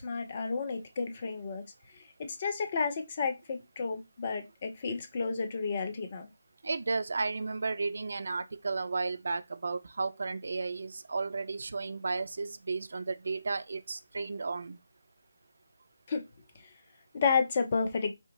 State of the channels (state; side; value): inverted; both; correlation -0.83